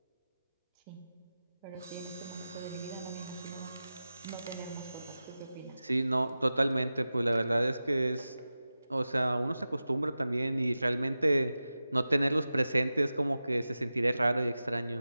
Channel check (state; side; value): inverted; both; correlation -0.95